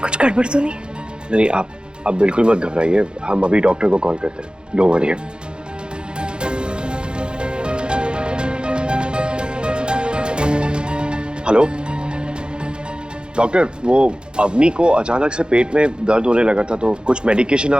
गड़बड़ तो नहीं? नहीं, आप बिल्कुल मत घबराइए, हम अभी डॉक्टर को कॉल करते हैं। Don't worry. हेलो डॉक्टर, वो अवनी को अचानक से पेट में दर्द होने लगा था, तो कुछ मेडिकेशन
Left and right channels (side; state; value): left; late; 0.050 ms